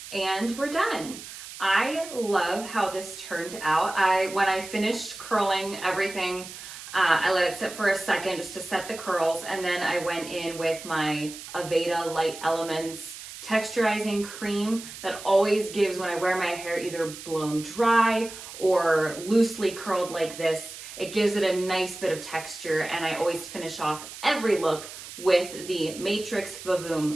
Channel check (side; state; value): right; noise; hiss, 13 dB below the sound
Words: And we're done. I love how this turned out. When I finished curling everything, I let it sit for a second just to set the curls, and then I went in with my Aveda Light Elements texturizing cream that always gives, when I wear my hair either blown dry or loosely curled like this, it gives it a nice bit of texture, and I always finish off every look with the Matrix